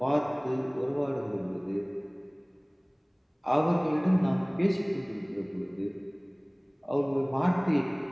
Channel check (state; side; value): identical; both; correlation 1.00